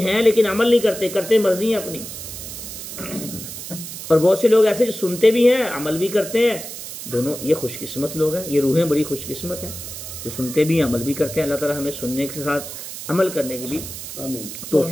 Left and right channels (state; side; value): noise; right; hiss, 10 dB below the sound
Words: لیکن عمل نہیں کرتے مرضی ہیں اپنی، اور بہت سے لوگ ایسے جو سنتے بھی ہیں عمل بھی کرتے ہیں. دونوں یہ خوش قسمت لوگ ہیں، یہ روحیں بڑی خوش قسمت ہیں جو سنتے بھی ہیں عمل بھی کرتے ہیں. اللہ تعالیٰ ہمیں سننے کے ساتھ عمل کرنے کی بھی